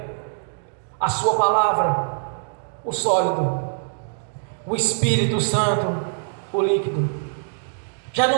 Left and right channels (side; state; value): left; silent; digital silence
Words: a sua palavra, o sólido, o Espírito Santo, o líquido. Já